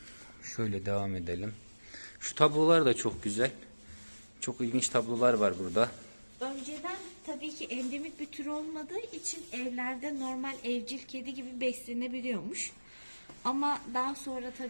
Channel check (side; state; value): both; inverted; correlation -1.00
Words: Şöyle devam edelim. Şu tablolar da çok güzel. Çok ilginç tablolar var burada. Önceden tabii ki endemik bir tür olmadığı için evlerde normal evcil kedi gibi beslenebiliyormuş. Ama daha sonra